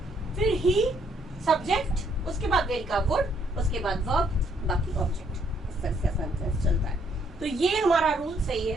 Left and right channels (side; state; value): both; normal; correlation 0.69